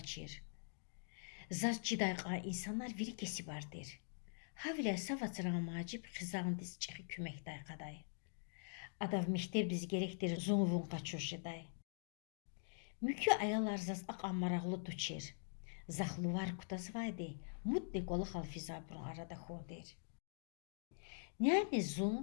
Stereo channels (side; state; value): right; silent; digital silence